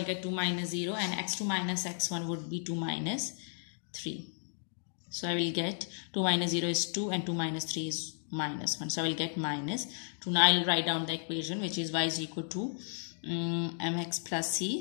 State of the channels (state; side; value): silent; right; digital silence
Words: get 2 minus 0 and x2 minus x1 would be 2 minus 3. So I will get 2 minus 0 is 2 and 2 minus 3 is minus 1. So I will get minus 2. Now I'll write down the equation, which is y is equal to mx plus